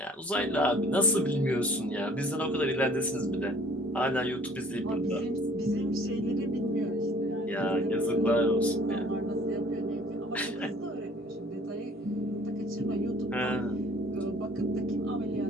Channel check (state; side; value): normal; both; correlation 0.54